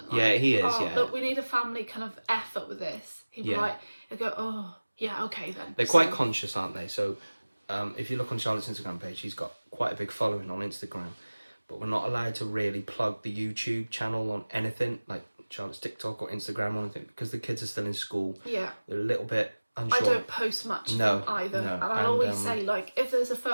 he is, look, we need a family kind of effort with this. He'll be he'll go, oh, yeah, okay then. They're quite conscious, aren't they? So if you look on Charlotte's Instagram page, she's got quite a big following on Instagram. But we're not allowed to really plug the YouTube channel on anything, like Charlotte's TikTok or Instagram or anything, because the kids are still in school. Yeah. They're a little bit unsure. I don't post much of them either. No. And I always say, if there's a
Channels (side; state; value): both; inverted; correlation -1.00